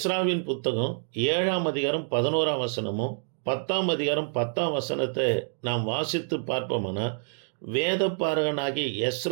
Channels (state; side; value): silent; left; digital silence